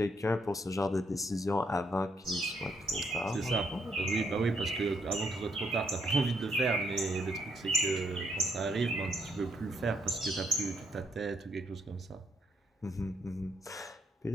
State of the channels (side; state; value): both; normal; correlation 0.74